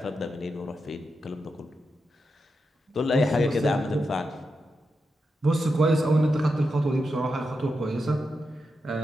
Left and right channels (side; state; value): both; normal; correlation 0.87